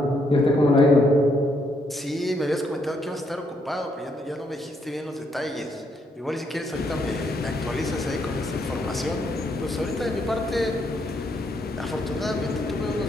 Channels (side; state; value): both; normal; correlation 0.74